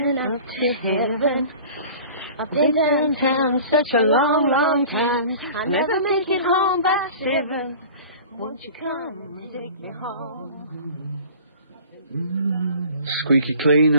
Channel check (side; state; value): both; inverted; correlation -0.42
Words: up to heaven. I've been downtown such a long, long time. I never make it home by 7. Won't you come and take me home? Squeaky clean,